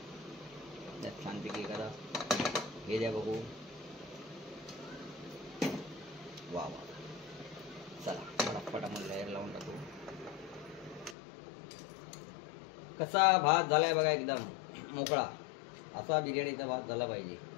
त्यात छानपैकी करा. हे द्या बघू. वा वा. चला फटाफट आपण लेअर लावून टाकू. कसा भात झालाय बघा, एकदम मोकळा. असा बिर्याणीचा भात झाला पाहिजे.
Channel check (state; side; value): drops out; right; at 11.2 s